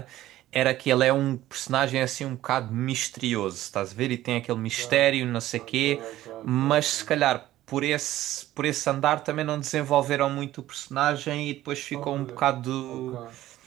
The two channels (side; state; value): left; quieter; 14.6 dB